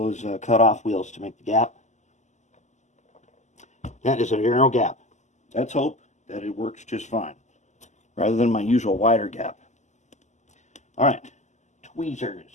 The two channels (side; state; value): right; late; 0.34 ms